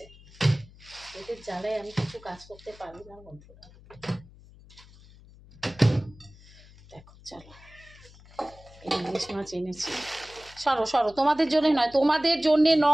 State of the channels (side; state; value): left; noise; hum, 23 dB below the sound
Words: এদের জ্বালায় আমি কিছু কাজ করতে পারি না বন্ধুরা। দেখো চলো, ইলিশ মাছ এনেছি। সরো সরো, তোমাদের জন্য নয়, তোমাদের জন্যে